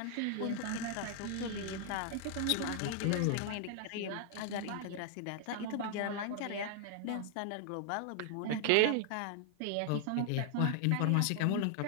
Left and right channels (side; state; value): both; different; correlation 0.00